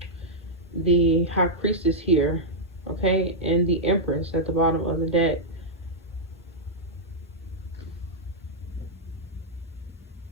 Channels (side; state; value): both; normal; correlation -0.07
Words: the High Priestess here, okay, and the Empress at the bottom of the deck.